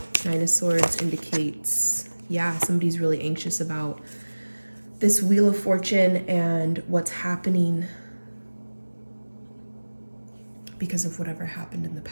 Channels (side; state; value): both; inverted; correlation -1.00